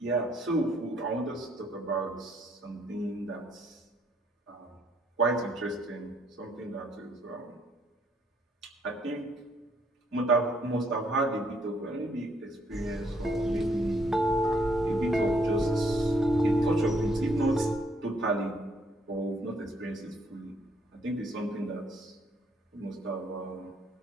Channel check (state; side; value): normal; both; correlation 0.69